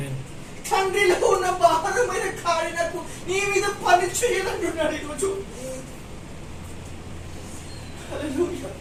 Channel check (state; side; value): identical; both; correlation 1.00